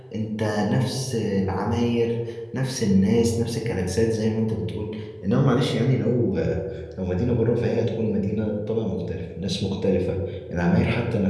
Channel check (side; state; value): both; identical; correlation 1.00